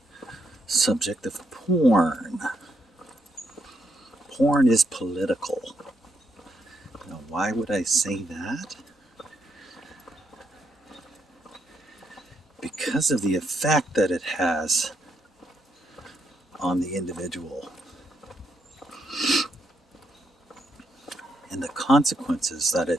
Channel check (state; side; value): normal; both; correlation 0.77